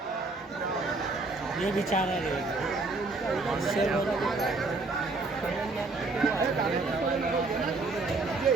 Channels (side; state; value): left; quieter; 3.5 dB